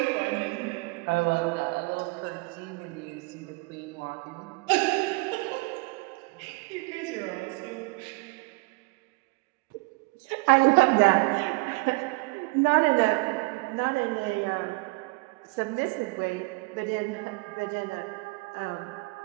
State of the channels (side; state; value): left; quieter; 27.2 dB